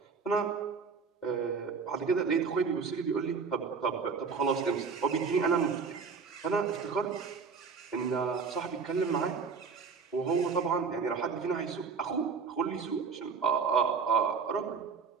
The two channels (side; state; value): left; quieter; 5.4 dB